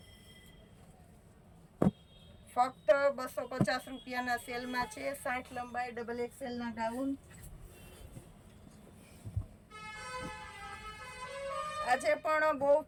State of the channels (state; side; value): identical; both; correlation 1.00